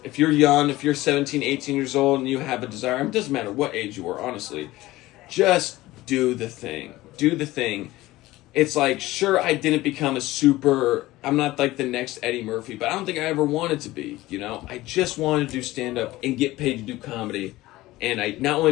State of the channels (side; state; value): right; quieter; 17.8 dB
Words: if you're young, if you're 17, 18 years old and you have a desire, it doesn't matter what age you are, honestly, just do the thing. Do the thing. It's like, sure, I didn't become I'm not like the next Eddie Murphy, but I don't think I ever wanted to be, you know? I just wanted to do stand-up and get paid to do comedy. And I not only